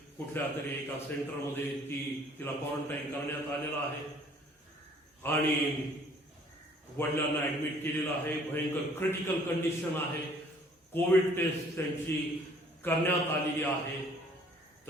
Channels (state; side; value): normal; both; correlation 0.57